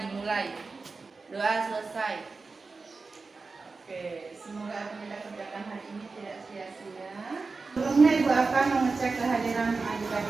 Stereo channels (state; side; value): quieter; left; 4.1 dB